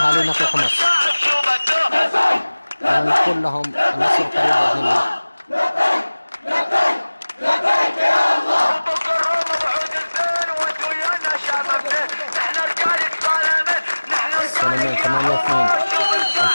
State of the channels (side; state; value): both; inverted; correlation -1.00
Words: في حمص ونقول لهم النصر قريب بإذن الله. السلمين 8/2